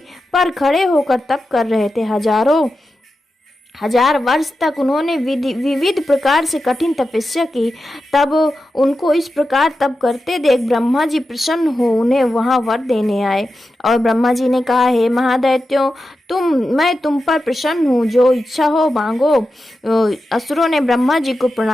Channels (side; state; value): both; normal; correlation 0.91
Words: पर खड़े होकर तप कर रहे थे। हजार वर्ष तक उन्होंने विविध प्रकार से कठिन तपस्या की। तब उनको इस प्रकार तप करते देख ब्रह्मा जी प्रसन्न हो उन्हें वहां वर देने आए। और ब्रह्मा जी ने कहा, हे महादैत्यों, मैं तुम पर प्रसन्न हूँ, जो इच्छा हो मांगो। असुरों ने ब्रह्मा जी को